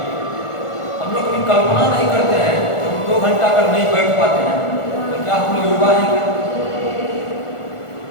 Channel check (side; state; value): right; late; 1.4 ms